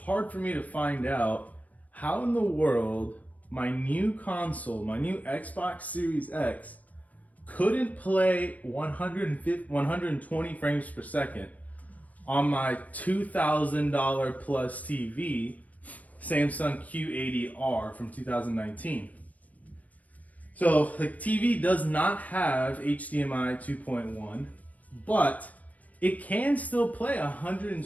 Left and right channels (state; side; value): late; right; 0.074 ms